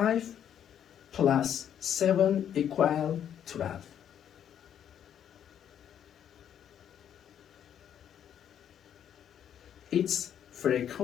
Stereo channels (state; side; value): quieter; right; 9.5 dB